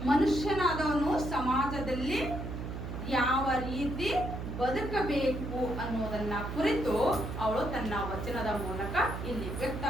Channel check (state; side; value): noise; right; hum, 6 dB below the sound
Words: ಮನುಷ್ಯನಾದವನು ಸಮಾಜದಲ್ಲಿ ಯಾವ ರೀತಿ ಬದುಕಬೇಕು ಅನ್ನೋದನ್ನ ಕುರಿತು ಅವಳು ತನ್ನ ವಚನದ ಮೂಲಕ ಇಲ್ಲಿ